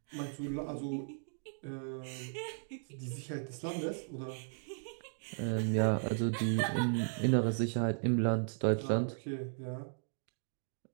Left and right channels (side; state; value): left; silent; digital silence